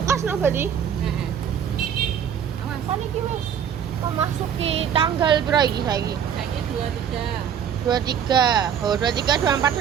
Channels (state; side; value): quieter; left; 8.4 dB